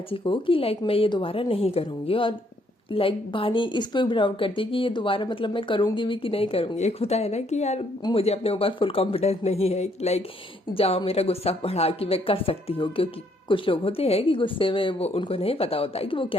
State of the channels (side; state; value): both; normal; correlation 0.69